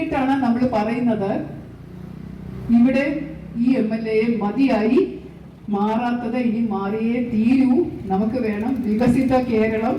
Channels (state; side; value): identical; both; correlation 1.00